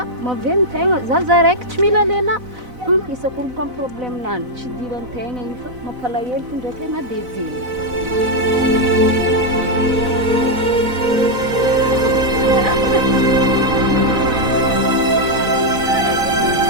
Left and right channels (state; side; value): late; left; 4.0 ms